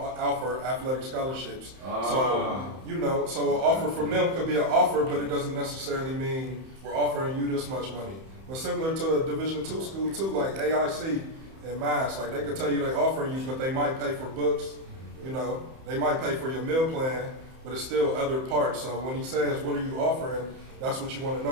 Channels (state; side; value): late; left; 31 ms